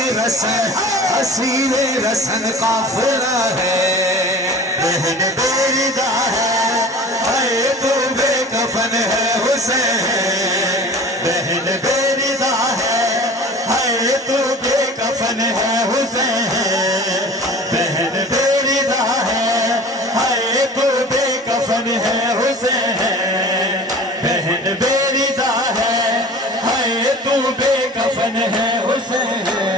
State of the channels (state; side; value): normal; both; correlation 0.41